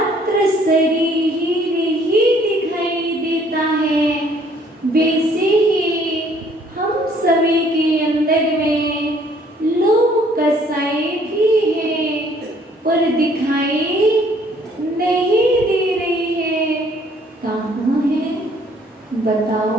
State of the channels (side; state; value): both; normal; correlation 0.61